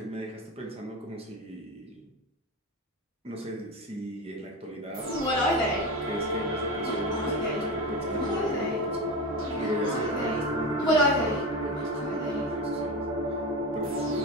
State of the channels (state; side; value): normal; both; correlation 0.22